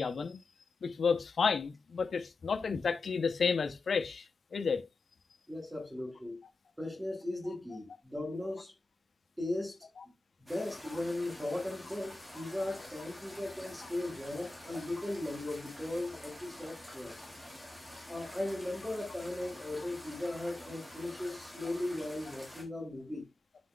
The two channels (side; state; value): right; quieter; 3.3 dB